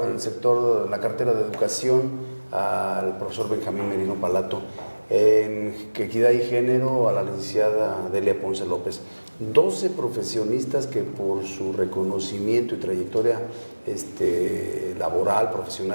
sector, la cartera de educación, al profesor Benjamín Merino Palato, en equidad y género, a la licenciada Delia Ponce López. 12 profesionistas que por su reconocimiento y trayectoria laboral,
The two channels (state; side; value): inverted; both; correlation -1.00